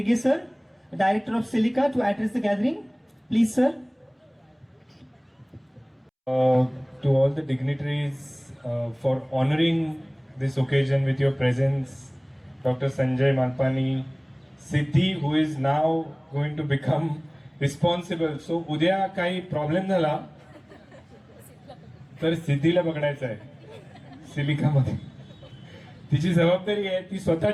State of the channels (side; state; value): both; identical; correlation 1.00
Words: sir, Director of Silica, to address the gathering. Please, sir. To all the dignitaries for honoring this occasion with your presence, Dr. Sanjay Malpani, Siddhi, who is now going to become responsible. So, उद्या काही problem झाला तर सिद्धीला बघायचं आहे सिलिकामध्ये. तिची जबाबदारी आहे, ती स्वतः